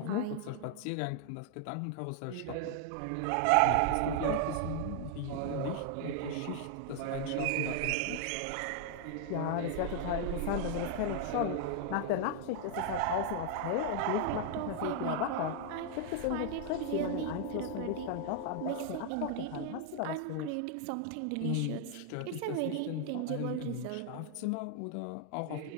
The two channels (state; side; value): different; both; correlation 0.00